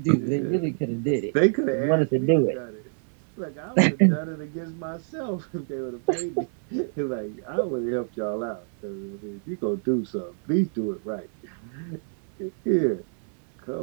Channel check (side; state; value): left; silent; 60 dB below the other